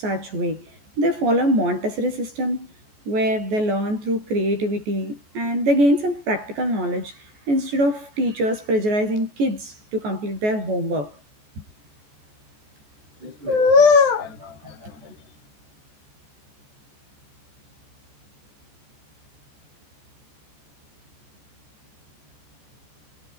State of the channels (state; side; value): late; left; 14 ms